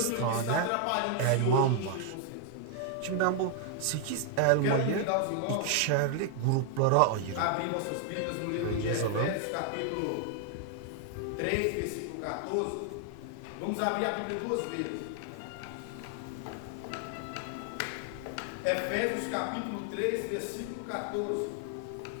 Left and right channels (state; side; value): different; both; correlation 0.00